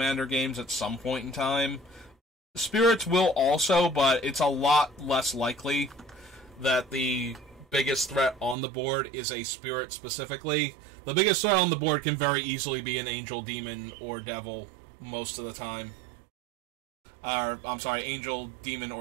games at some point in time. Spirits will also, but it's a lot less likely that the biggest threat on the board is a spirit specifically. The biggest threat on the board can very easily be an angel, demon, or devil most of the time. I'm sorry, angel, demon,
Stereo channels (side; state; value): left; drops out; at 8.6 s